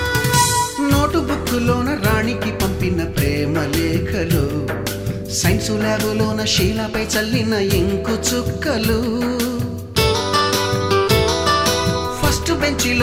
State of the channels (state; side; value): identical; both; correlation 1.00